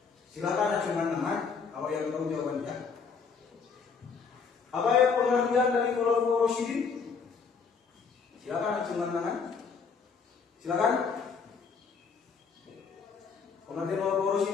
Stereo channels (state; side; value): quieter; right; 5.6 dB